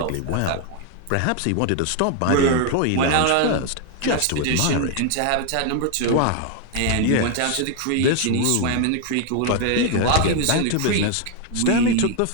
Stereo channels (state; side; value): different; both; correlation 0.01